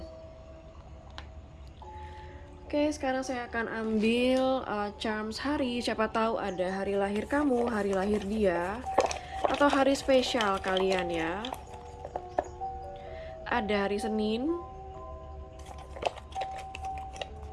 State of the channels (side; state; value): both; identical; correlation 1.00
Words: Oke, sekarang saya akan ambil charms hari. Siapa tahu ada hari lahir kamu, hari lahir dia, atau hari spesial kalian ya. Ada hari Senin.